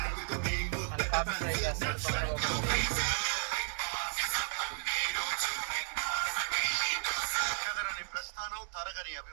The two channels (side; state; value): left; silent; 55 dB below the other